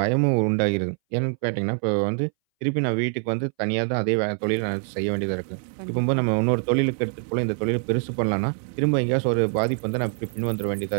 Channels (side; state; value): left; silent; 61 dB below the other